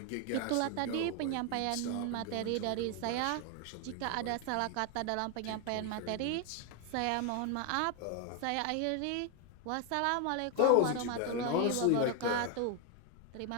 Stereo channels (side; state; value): both; different; correlation 0.01